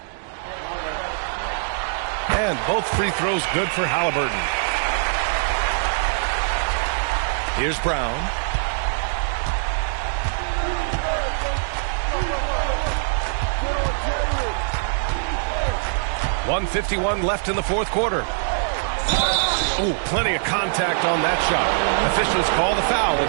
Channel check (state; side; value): silent; left; digital silence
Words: And both free throws good for Halliburton. Here's Brown. 1:51 left in the fourth quarter. Ooh, plenty of contact on that shot. Officials call the foul, and